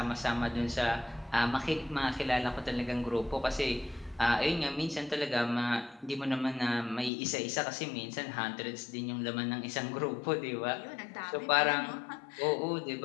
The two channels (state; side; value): drops out; right; at 7.1 s